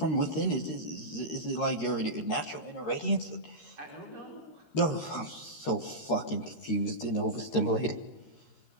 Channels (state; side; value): late; right; 13 ms